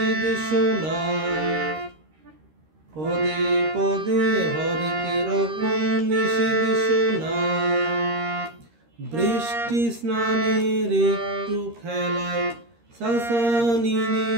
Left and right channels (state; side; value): late; left; 13 ms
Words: শোনা, পদে পদে হরেক রকম নিষেধ শোনা, বৃষ্টি স্নানের একটু খেলায় সাসানি